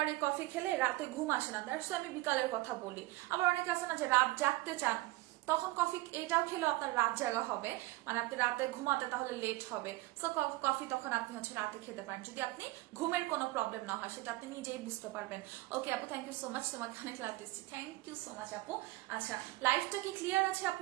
এই কফি খেলে রাতে ঘুম আসে না, দ্যাটস আমি বিকালের কথা বলি। আবার অনেকে আছে না যে রাত জাগতে চান, তখন কফি এটাও খেলেও আপনার রাত জাগা হবে, মানে আপনি রাতে ঘুমাতে তাহলে লেট হবে। সো কফি তখন আপনি হচ্ছে রাতে খেতে পারেন, যদি আপনি ঘুমের কোনো প্রবলেম না হয়, সেটা আপনি নিজেই বুঝতে পারবেন। ওকে আপু, থ্যাংক ইউ সো মাচ, তোমাকে অনেক লাভ দিচ্ছি। থ্যাংক ইউ সো মাচ আপু। আচ্ছা, লাইফটা কি ক্লিয়ার আছে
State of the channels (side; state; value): left; quieter; 19.7 dB